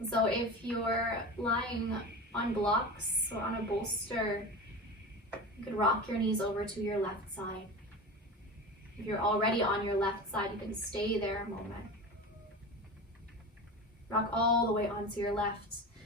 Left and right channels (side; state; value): both; normal; correlation 0.29